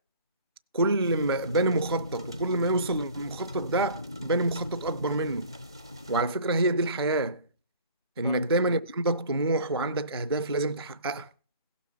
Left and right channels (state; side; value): inverted; both; correlation -0.47